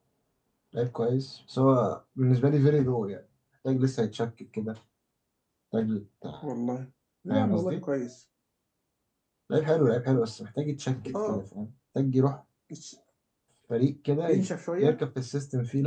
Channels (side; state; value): both; identical; correlation 1.00